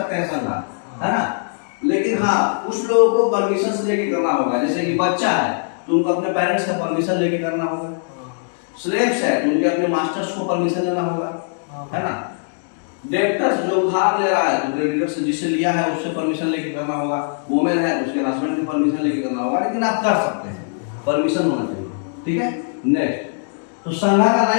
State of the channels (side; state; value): right; silent; digital silence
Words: हैं संघा, है ना। लेकिन हाँ, कुछ लोगों को परमिशन लेके करना होगा, जैसे कि बच्चा है तो उनको अपने पेरेंट्स का परमिशन लेके करना होगा, स्लेव्स है तो उनके अपने मास्टर्स को परमिशन लेना होगा, है ना। डेब्टर्स जो उधार ले रहा है तो क्रेडिटर से जिससे लिया है उससे परमिशन लेके करना होगा, वुमेन है उसके हस्बैंड की परमिशन लेके करना होगा, लेकिन आप कर सकते हैं, परमिशन होना चाहिए, ठीक है। नेक्स्ट, तो संघा का